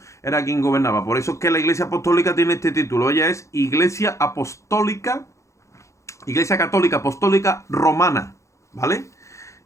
era quien gobernaba. Por eso es que la Iglesia Apostólica tiene este título. Ella es Iglesia Católica Apostólica Romana, ¿vale?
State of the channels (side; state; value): right; late; 0.15 ms